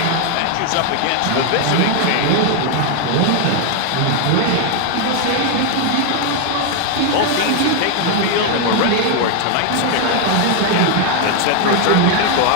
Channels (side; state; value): both; different; correlation 0.01